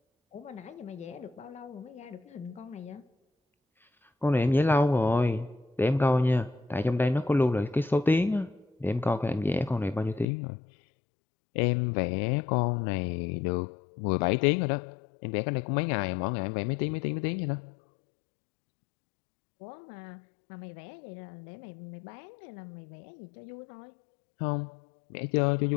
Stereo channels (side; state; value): right; drops out; at 10.2 s